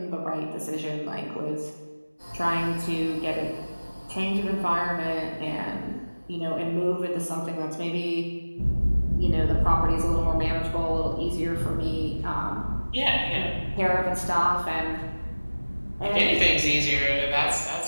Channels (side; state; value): both; inverted; correlation -1.00